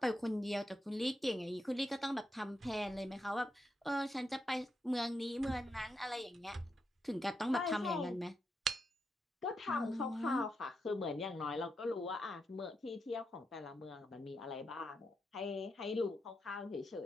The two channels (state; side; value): normal; both; correlation 0.84